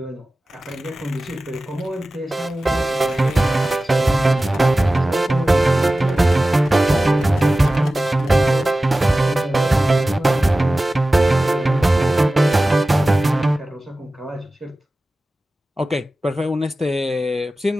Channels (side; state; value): both; normal; correlation 0.96